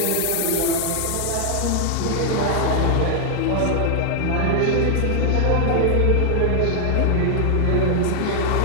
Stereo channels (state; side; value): different; both; correlation 0.00